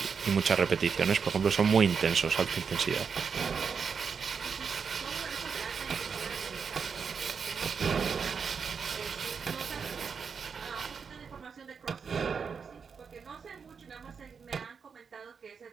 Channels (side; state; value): left; quieter; 6.0 dB